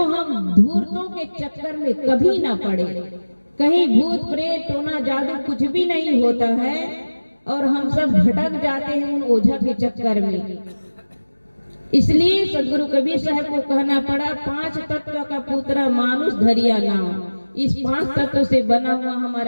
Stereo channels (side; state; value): both; inverted; correlation -1.00